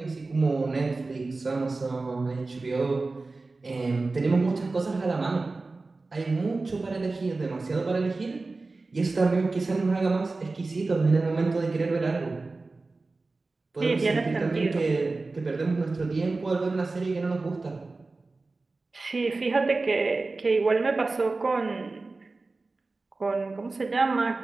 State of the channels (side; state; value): left; quieter; 3.5 dB